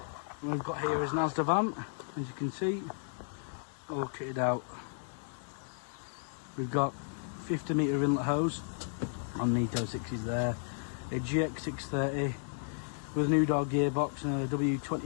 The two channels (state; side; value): silent; right; digital silence